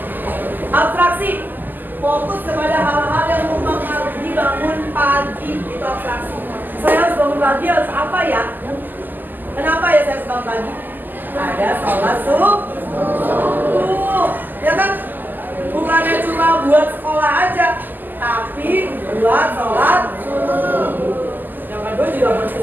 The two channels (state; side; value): late; left; 0.087 ms